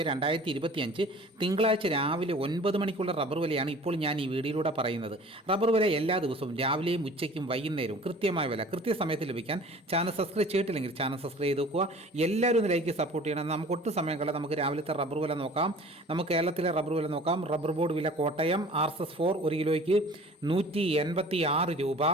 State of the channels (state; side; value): normal; both; correlation 0.46